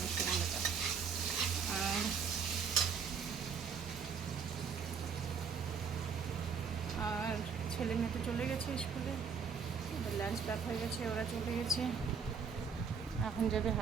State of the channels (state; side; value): quieter; left; 6.2 dB